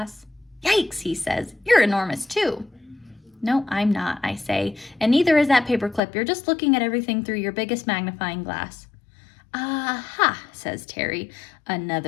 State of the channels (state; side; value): drops out; right; at 6.0 s